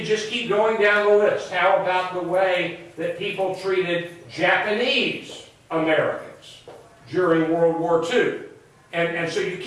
just keep going down the list. How about the way that people treated Japanese Americans during World War II? And so you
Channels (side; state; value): both; identical; correlation 1.00